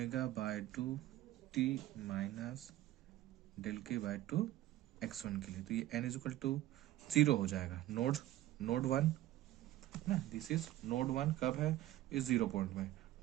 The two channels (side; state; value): left; quieter; 14.8 dB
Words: by 2 t minus del k by 2 x1 के लिए, तो ये n इज इक्वल टू 0 हो जाएगा, नोड 1 ना, दिस इज नोड 1 कब है, इस 0 पॉइंट में,